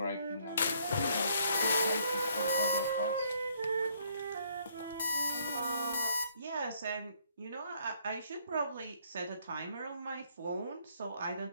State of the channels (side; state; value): both; inverted; correlation -0.65